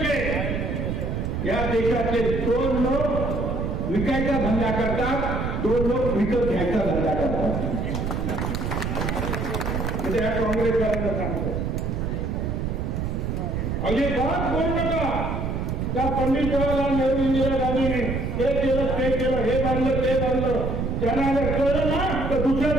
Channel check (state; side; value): noise; right; rumble, 1 dB below the sound